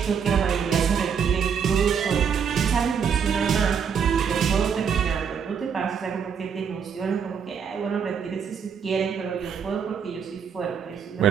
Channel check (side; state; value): left; quieter; 7.0 dB